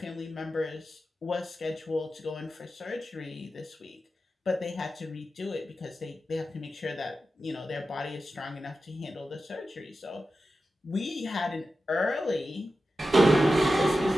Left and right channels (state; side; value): normal; both; correlation 0.92